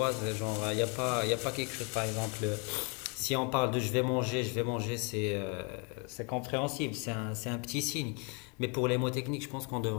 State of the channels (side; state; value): right; quieter; 34.9 dB